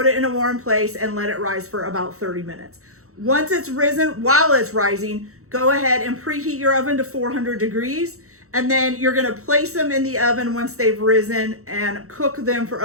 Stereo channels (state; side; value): late; left; 0.64 ms